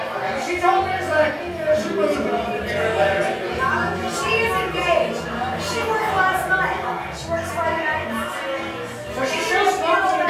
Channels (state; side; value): identical; both; correlation 1.00